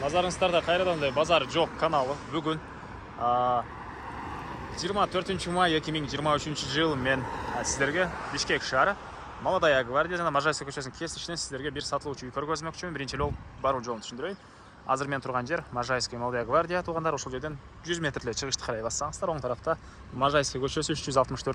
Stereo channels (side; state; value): both; identical; correlation 1.00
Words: Назарыңыздарда қайрадан базар жоқ каналы. Бүгін 24 май 2023 жыл мен сіздерге Бишкек шары Молодая гвардия жана Можайская көшесінің кесішінен сіздерге бір сатылушы үй көргөзмөкчүмүн. Биринчи жол баруу жолун түшүндүрөйүн. Азыр мен турган жер Можайская Молодая гвардия туғандар. Ошол жерден 100 метрле чыгышты карай бассаңыздар, оң тарафта Можайская көчөсү